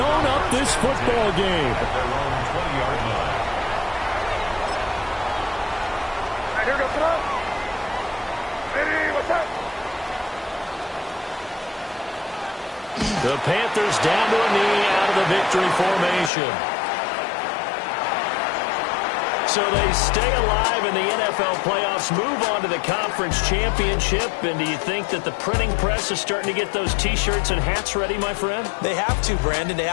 up this football game. Here goes it up. Ready, what's up? The Panthers down to a knee out of the victory formation. So they stay alive in the NFL playoffs, move on to the conference championship. And do you think that the printing press is starting to get those T-shirts and hats ready, my friend? They have to, Brandon. They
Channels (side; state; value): right; drops out; at 16.3 s